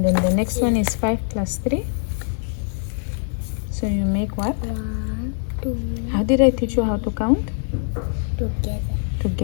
then the next one is 5 plus 3. So you make what? 1, 2. How did I teach you how to count? Together.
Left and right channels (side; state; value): right; silent; 64 dB below the other